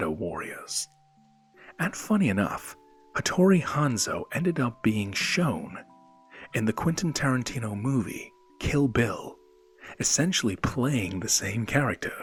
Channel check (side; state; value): both; identical; correlation 1.00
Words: Warriors. And funny enough, Hattori Hanzo ended up being shown in the Quentin Tarantino movie Kill Bill, essentially playing the same